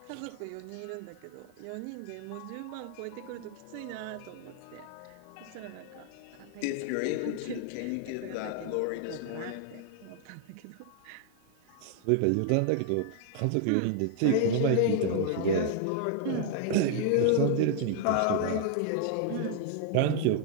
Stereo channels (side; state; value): both; different; correlation 0.00